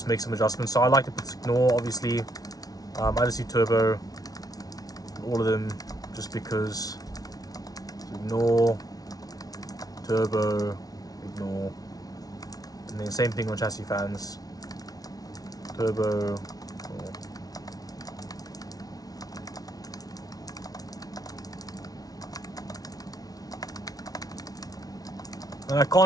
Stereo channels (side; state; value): right; late; 0.18 ms